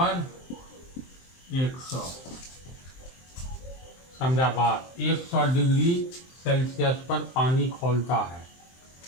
100। समझा बात? 100 डिग्री सेल्सियस पर पानी खौलता है।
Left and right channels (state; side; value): late; right; 23 ms